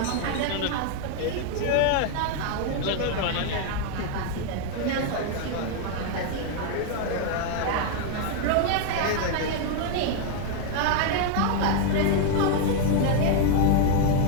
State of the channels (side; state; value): both; different; correlation 0.00